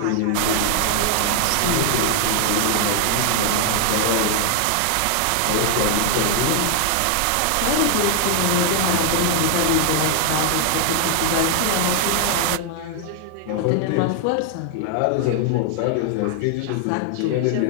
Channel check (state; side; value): different; both; correlation 0.00